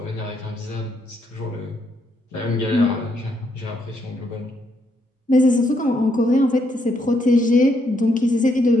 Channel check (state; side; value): normal; both; correlation 0.75